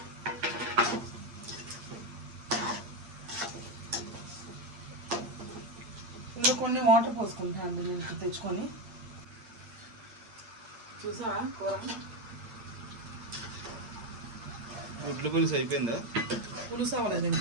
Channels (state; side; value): late; left; 8.8 ms